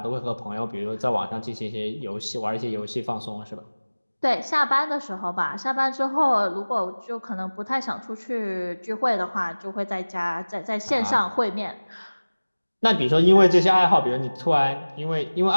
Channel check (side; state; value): both; inverted; correlation -1.00